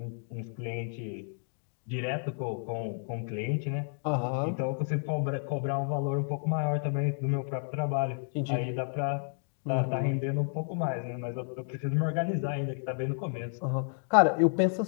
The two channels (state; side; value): silent; right; digital silence